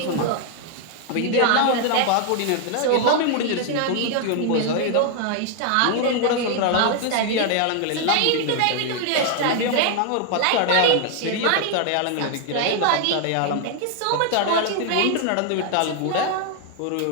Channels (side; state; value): both; different; correlation 0.00